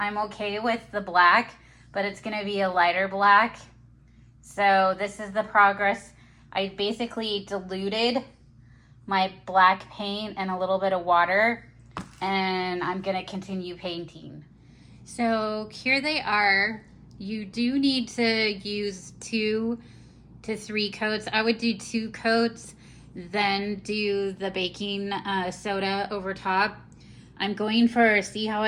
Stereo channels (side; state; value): both; identical; correlation 1.00